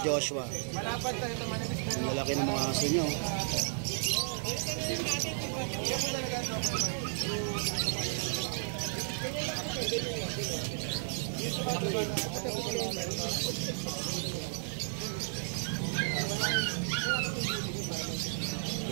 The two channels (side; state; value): left; silent; digital silence